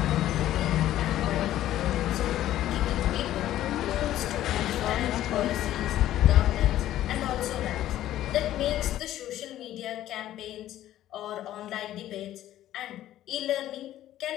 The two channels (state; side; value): quieter; right; 13.2 dB